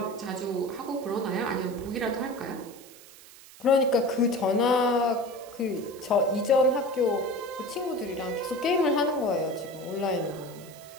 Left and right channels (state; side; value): noise; right; hiss, 20 dB below the sound